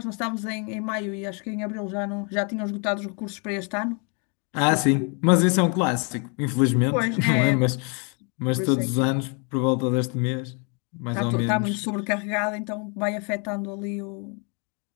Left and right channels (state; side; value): quieter; right; 36.4 dB